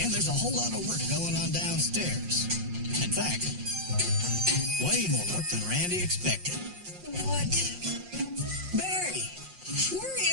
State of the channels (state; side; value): late; left; 5.6 ms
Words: And there's a whole lot of work going on downstairs. In fact, way more work than Randy expected. What? Barry, where